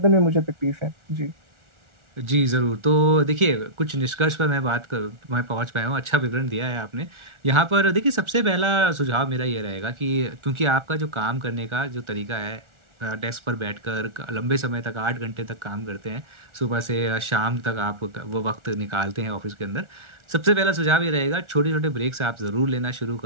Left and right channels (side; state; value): left; late; 1.4 ms